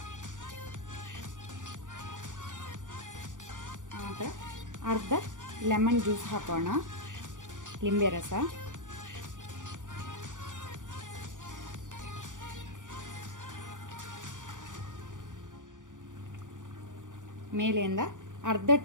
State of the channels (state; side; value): late; left; 0.87 ms